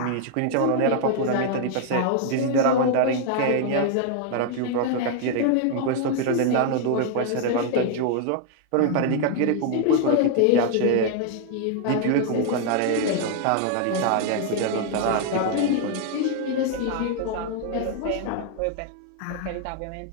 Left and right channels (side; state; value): both; different; correlation 0.00